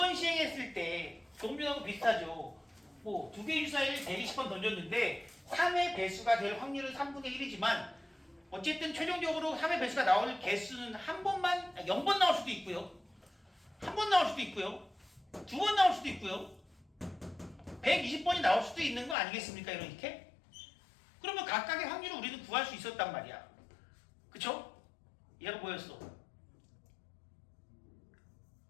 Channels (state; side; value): drops out; right; at 19.2 s